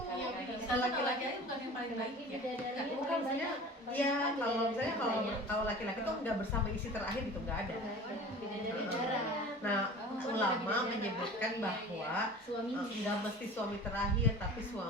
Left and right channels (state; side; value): normal; both; correlation 0.40